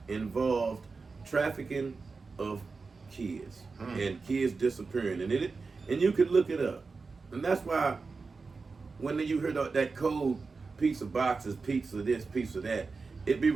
involved trafficking of kids and kids disappearing. And you could look it up. And that's why when you hear that code, pizza boxes, pizza this, pizza that, it be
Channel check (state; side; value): quieter; left; 4.4 dB